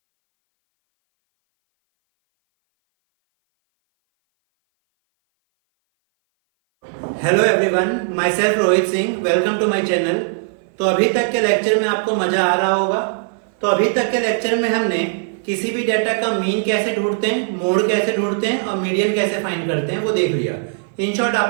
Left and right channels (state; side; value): silent; left; 58 dB below the other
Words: Hello everyone, my self Rohit Singh, welcome to my channel. तो अभी तक के lecture में आपको मजा आ रहा होगा। तो अभी तक के लेक्चर में हमने किसी भी डेटा का मीन कैसे ढूंढते हैं, मोड कैसे ढूंढते हैं और मीडियन कैसे फाइंड करते हैं वो देख लिया। इन शॉर्ट